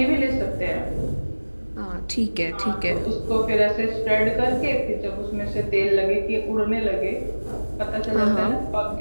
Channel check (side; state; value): both; inverted; correlation -1.00